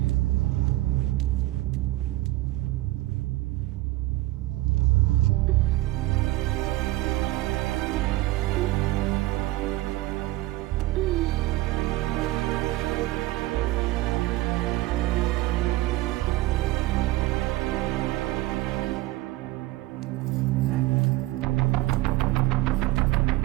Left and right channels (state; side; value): quieter; left; 17.9 dB